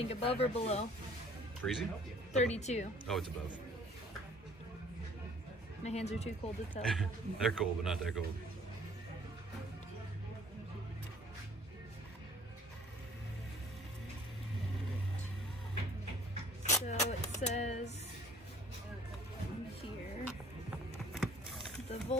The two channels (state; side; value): normal; both; correlation 0.54